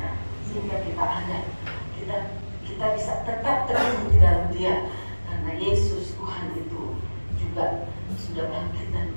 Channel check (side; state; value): both; inverted; correlation -1.00